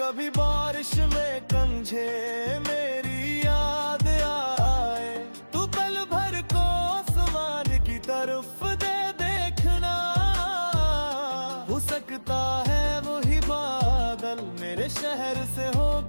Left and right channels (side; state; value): both; inverted; correlation -1.00